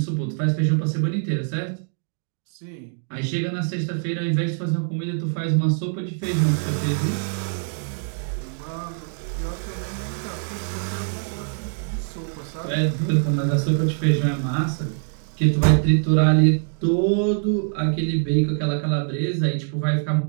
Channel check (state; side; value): silent; left; 63 dB below the other